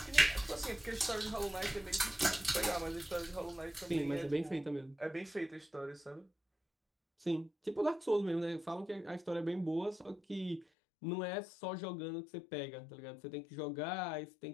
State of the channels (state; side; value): drops out; right; at 10.7 s